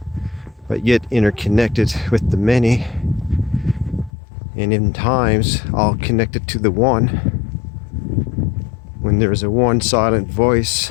but yet interconnected with the many, and in times all connected to the one. When there's a one silent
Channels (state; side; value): drops out; right; at 4.1 s